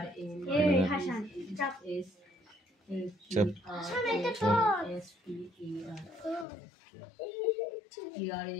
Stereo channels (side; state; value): right; drops out; at 6.5 s